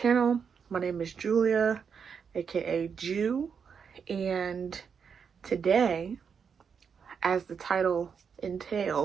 My name is Julia, aka Jew, and today, as the title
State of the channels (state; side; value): quieter; left; 6.5 dB